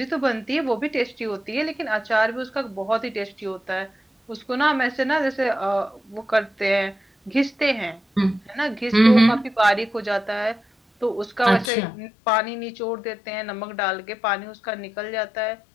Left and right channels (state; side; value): drops out; right; at 11.7 s